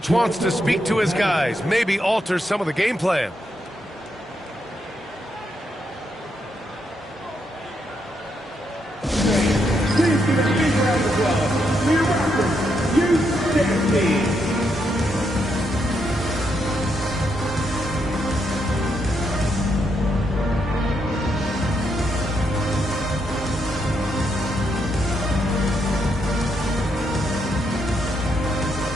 wants to speak to his guys, maybe alter some of the game plan. Please give a big round of applause for your Raptors. You stand team.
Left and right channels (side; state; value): both; normal; correlation 0.79